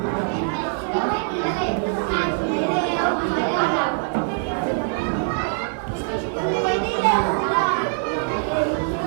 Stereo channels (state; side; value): silent; left; 59 dB below the other